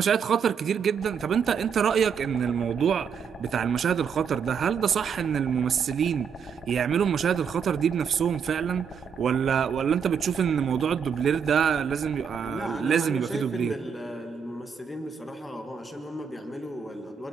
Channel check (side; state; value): left; quieter; 6.9 dB